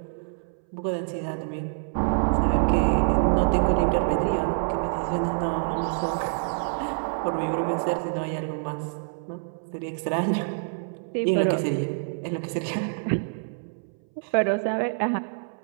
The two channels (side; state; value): left; silent; 61 dB below the other